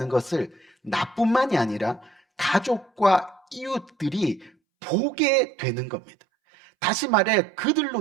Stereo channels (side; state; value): left; drops out; at 4.5 s